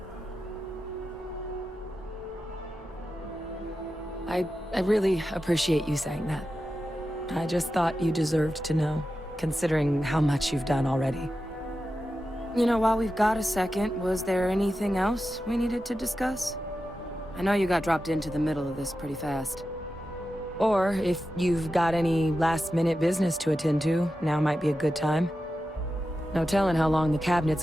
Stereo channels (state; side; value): normal; both; correlation 0.91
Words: I really appreciate you saying that. I just thought you deserved to know, considering how much you've done already. You know, while we've got a second, was there anything else we needed to discuss? I know you got dropped into the middle of this pretty fast. Or if you've got any last-minute business to attend to, now might be a good time. No telling how long the cabinet's